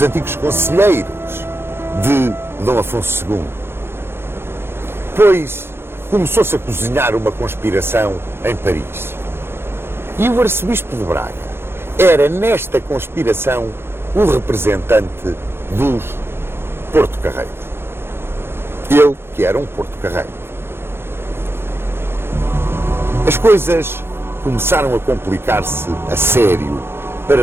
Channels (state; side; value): late; left; 0.11 ms